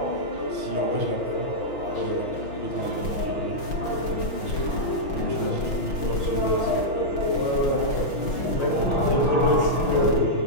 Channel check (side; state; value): right; late; 6.2 ms